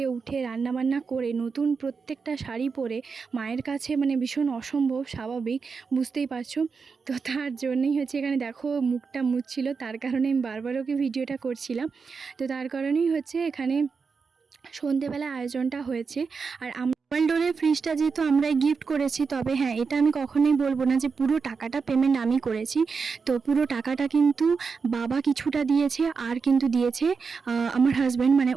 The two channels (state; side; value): quieter; left; 5.2 dB